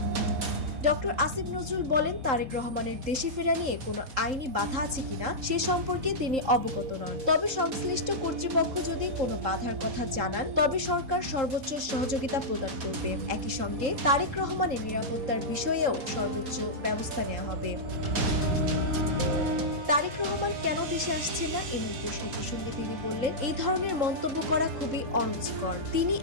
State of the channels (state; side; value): late; left; 3.8 ms